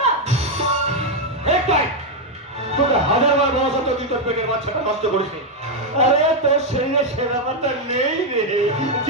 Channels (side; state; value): both; normal; correlation 0.02